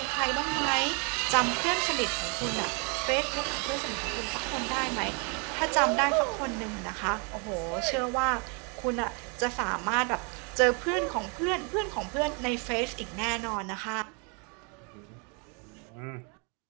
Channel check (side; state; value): left; quieter; 34.8 dB